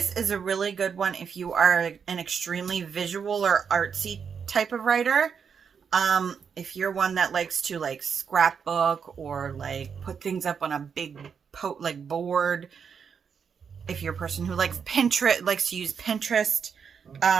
is a really good one if you are an extremely visual or artsy type of writer. If you're one that likes to like scrapbook or like put things up on a big board, if you're a person who likes likes to use Pinterest,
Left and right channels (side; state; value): left; quieter; 6.6 dB